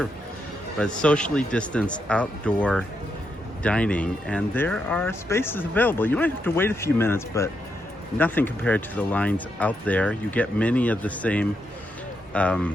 but socially distanced outdoor dining, and there are spaces available. You might have to wait a few minutes, but nothing compared to the lines out there. You get many of the same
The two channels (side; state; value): both; normal; correlation 0.81